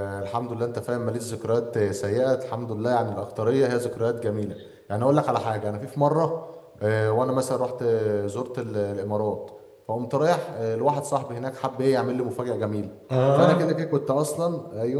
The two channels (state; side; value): identical; both; correlation 1.00